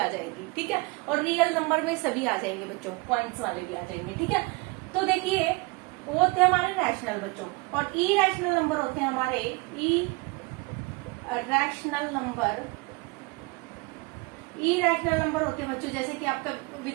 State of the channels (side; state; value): left; quieter; 27.1 dB